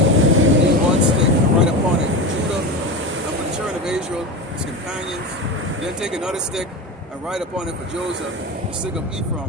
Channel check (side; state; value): both; normal; correlation 0.24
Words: one stick and write upon it Judah, and for the children of Israel, his companions. Then take another stick and write upon it for Joseph, the stick of